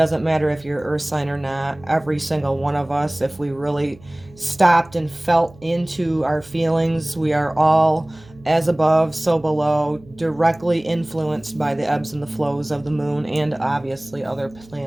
matter if you're earth sign or not. Every single one of us, if we really stopped and felt into our feelings, we are all as above, so below, directly influenced by the ebbs and the flows of the moon and obviously other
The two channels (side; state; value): right; noise; hum, 24 dB below the sound